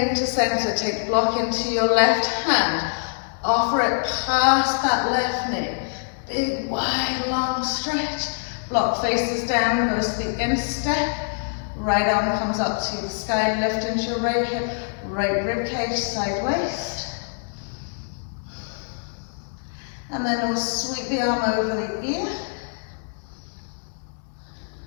to center, take the block into your left hand. Offer it past that left knee. Big, wide, long stretch. Block faces down, goes to the instep. Right arm comes up to the sky, lift into your right hip, right rib cage, side waist. And then we'll sweep the arm over the ear.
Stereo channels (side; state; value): right; silent; digital silence